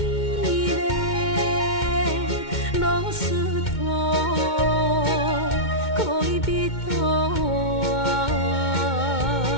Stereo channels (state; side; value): late; right; 2.2 ms